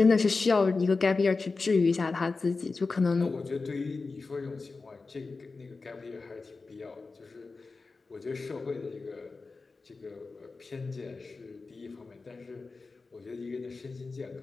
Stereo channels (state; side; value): quieter; right; 4.0 dB